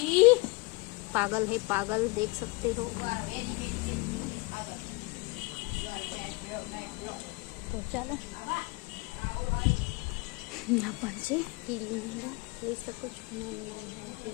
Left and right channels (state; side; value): quieter; right; 25.5 dB